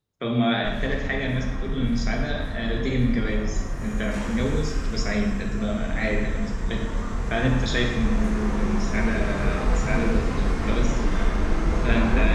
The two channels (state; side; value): identical; both; correlation 1.00